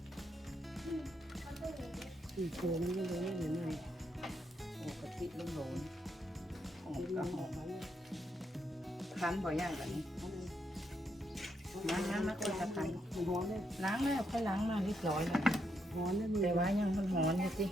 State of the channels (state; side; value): normal; both; correlation 0.79